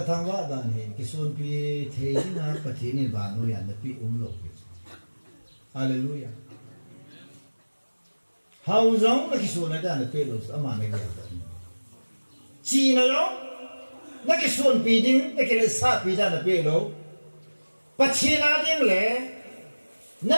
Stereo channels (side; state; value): both; inverted; correlation -1.00